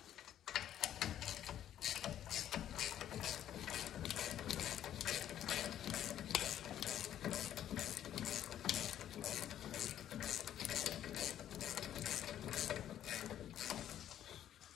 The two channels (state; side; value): quieter; right; 11.0 dB